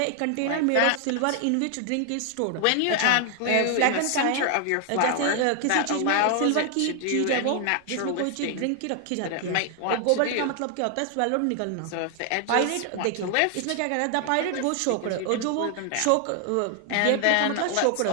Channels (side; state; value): both; different; correlation 0.00